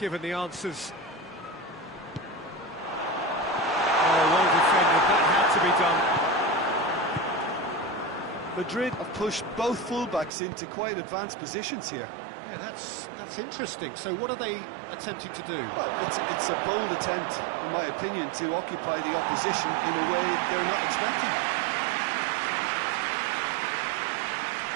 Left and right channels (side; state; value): left; drops out; at 10.3 s